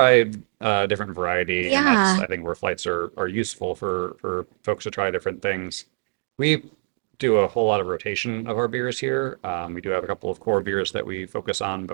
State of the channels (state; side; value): silent; left; digital silence